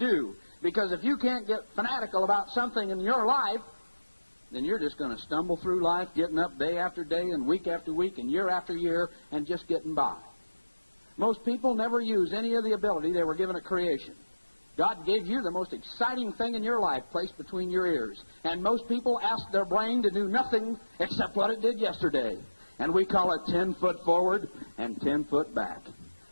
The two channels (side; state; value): both; inverted; correlation -1.00